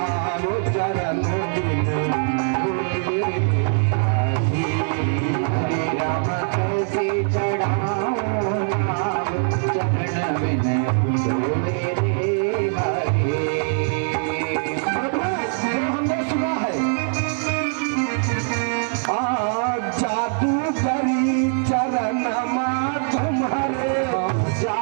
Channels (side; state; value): left; silent; 61 dB below the other